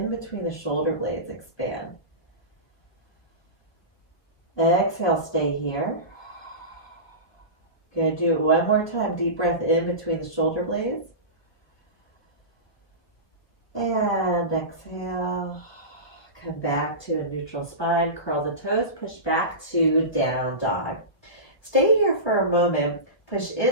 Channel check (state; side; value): late; right; 1.1 ms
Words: between the shoulder blades. Expand. Exhale, stay here. Good. Do it one more time. Deep breath in between the shoulder blades. And exhale. Come back to a neutral spine. Curl the toes. Push back to down dog. Stay here for a moment. Push